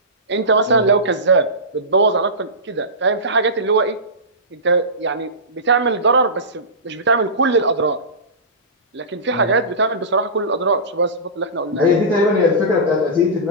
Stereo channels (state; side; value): normal; both; correlation -0.20